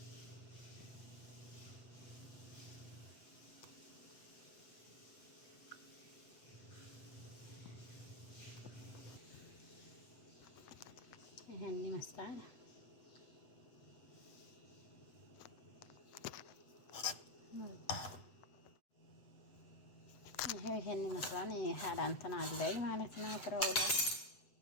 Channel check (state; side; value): late; right; 8.0 ms